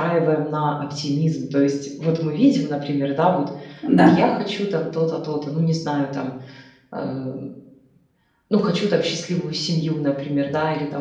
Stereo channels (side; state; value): both; identical; correlation 1.00